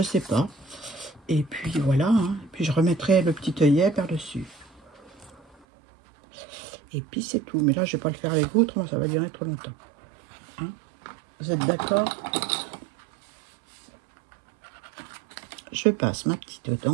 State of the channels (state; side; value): drops out; left; at 5.6 s